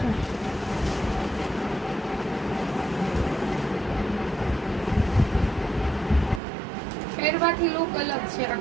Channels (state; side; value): drops out; left; at 6.4 s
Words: પહેરવાથી લુક અલગ છે